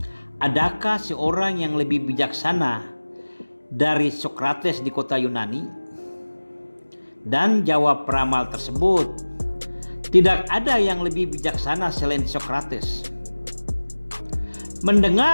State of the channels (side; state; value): both; inverted; correlation -1.00